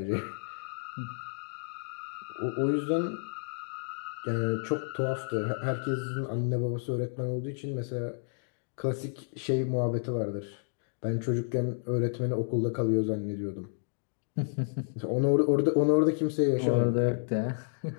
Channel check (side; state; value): right; silent; digital silence